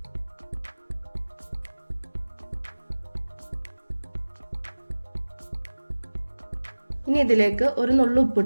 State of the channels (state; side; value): inverted; both; correlation -1.00